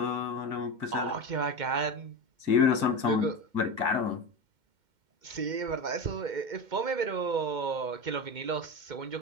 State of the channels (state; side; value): late; left; 2.1 ms